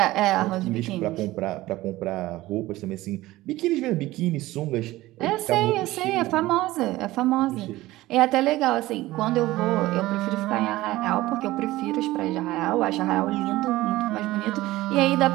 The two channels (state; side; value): quieter; left; 17.5 dB